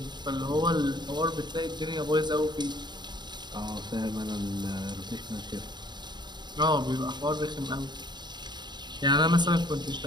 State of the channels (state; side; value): late; left; 0.21 ms